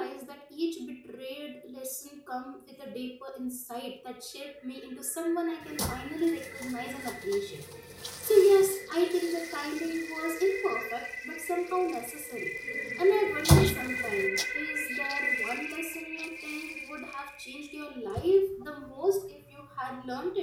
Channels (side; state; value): both; identical; correlation 1.00